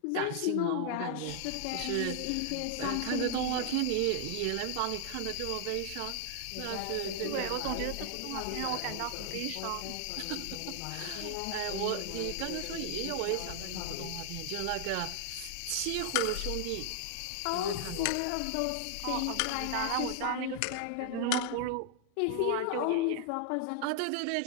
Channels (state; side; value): different; both; correlation 0.00